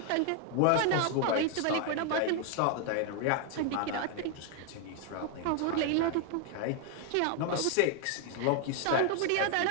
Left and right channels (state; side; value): different; both; correlation 0.00